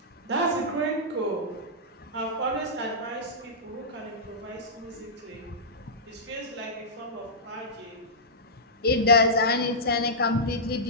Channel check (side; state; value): both; normal; correlation -0.13